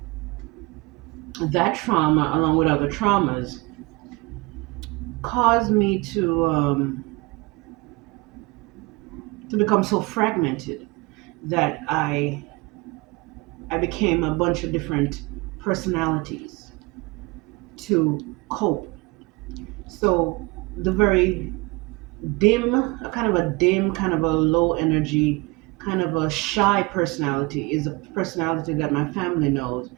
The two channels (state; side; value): quieter; left; 25.1 dB